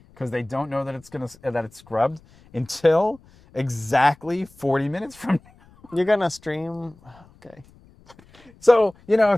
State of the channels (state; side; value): noise; left; rumble, 27 dB below the sound